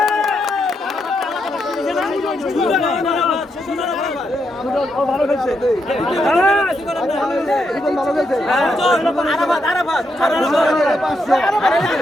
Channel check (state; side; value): normal; both; correlation 0.81